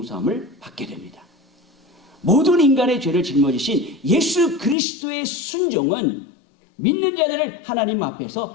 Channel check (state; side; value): drops out; right; at 4.8 s